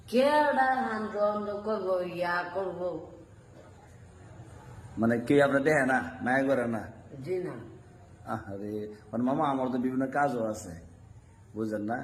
কেডা হান্দ করবো ইয়া করবো। মানে কে আপনি দেখে না, মায়া করে না? জি না। আরে মানে মামা আমার তো বিভিন্ন কাজও আছে, বুঝলেন না?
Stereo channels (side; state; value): both; identical; correlation 1.00